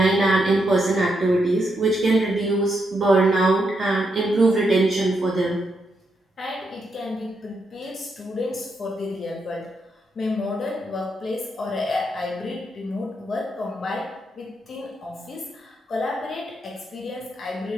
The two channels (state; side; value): normal; both; correlation 0.81